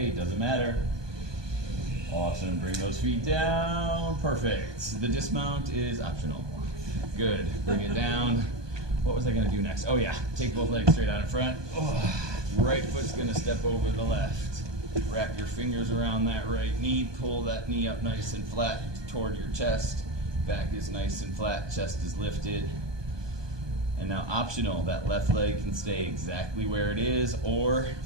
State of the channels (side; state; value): left; late; 1.2 ms